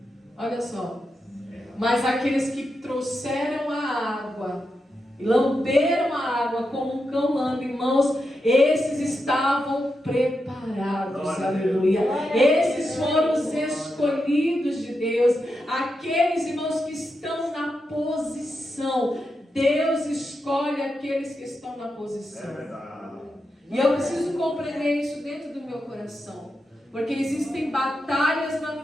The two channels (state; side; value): normal; both; correlation 0.87